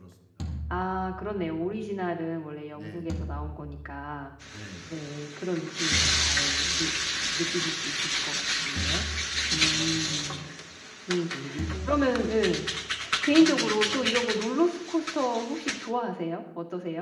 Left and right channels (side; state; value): both; identical; correlation 1.00